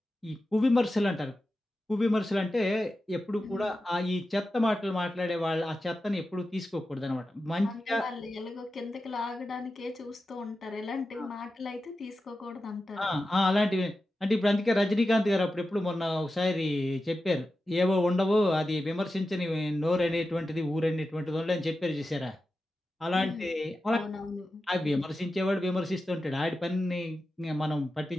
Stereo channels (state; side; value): normal; both; correlation 0.92